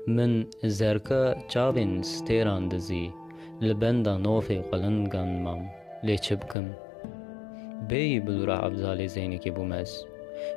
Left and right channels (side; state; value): right; drops out; at 6.6 s